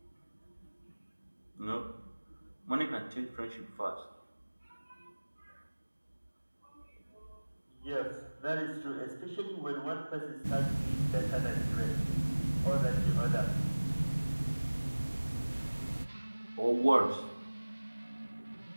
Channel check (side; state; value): both; inverted; correlation -1.00